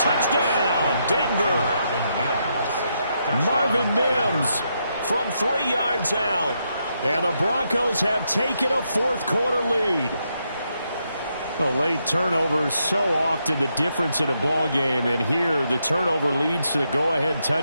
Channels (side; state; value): both; inverted; correlation -0.80